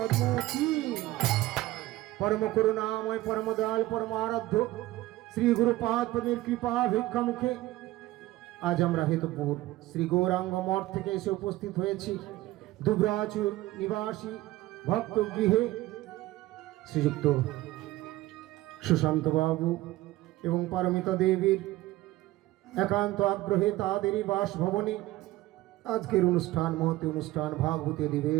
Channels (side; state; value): left; quieter; 17.3 dB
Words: কি परम करुणामय परम दयाल परम आराध्य श्री गुरुपाद पদের কৃপা ভিক্ষা মুখে আজ আমরা হেতুপুর শ্রী গৌরাঙ্গ মঠ থেকে এসে উপস্থিত হয়েছি দুবরাজুর নিবাসী ভক্ত গৃহে শ্রীযুক্ত সুশান্ত বাবু এবং পারমিতা দেবীর একান্ত আগ্রহে তাদেরই বাসভবনে আজকের অনুষ্ঠান মহতি অনুষ্ঠান ভাগবতী